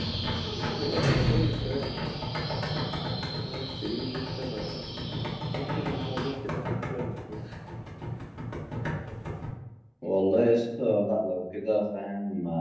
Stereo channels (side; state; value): both; identical; correlation 1.00